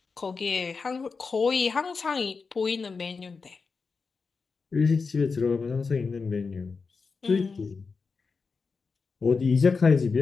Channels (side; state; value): right; quieter; 4.8 dB